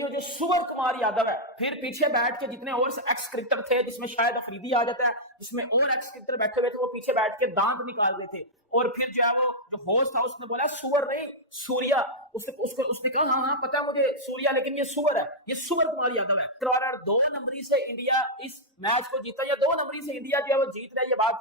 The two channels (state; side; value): normal; both; correlation -0.07